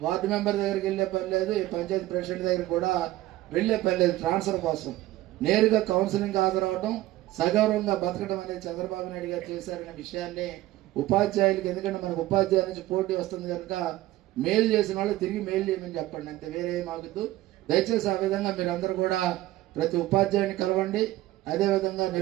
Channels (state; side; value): quieter; left; 16.2 dB